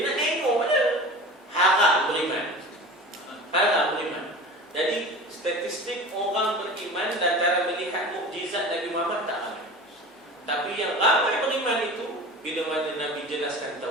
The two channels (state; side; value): normal; both; correlation 0.36